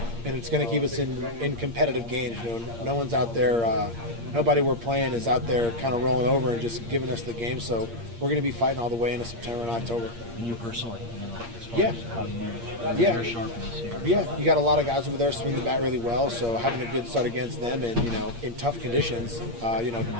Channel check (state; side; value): late; left; 8.6 ms